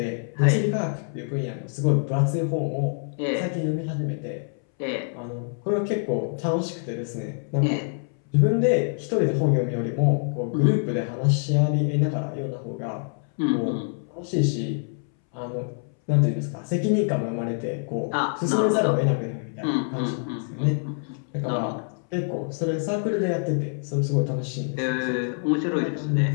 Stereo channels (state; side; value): silent; right; 61 dB below the other